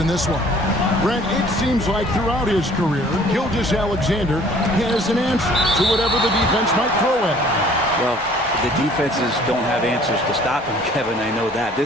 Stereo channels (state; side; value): normal; both; correlation 0.54